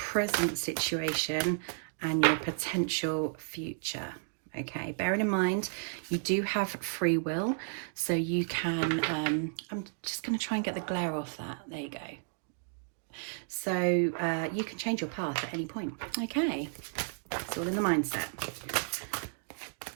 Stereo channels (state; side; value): silent; left; digital silence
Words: situation, and your potential future. Okay, bearing in mind you do have free will, so you can I'm just going to try and get the glare off that. There you go. So you can change your path at any point. Okay, it's all in the mindset.